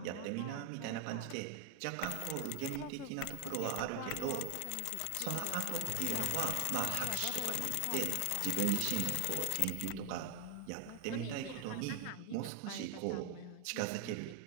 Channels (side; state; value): both; different; correlation 0.00